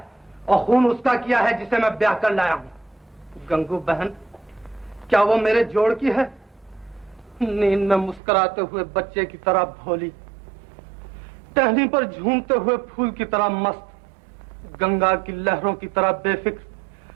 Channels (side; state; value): left; drops out; at 8.2 s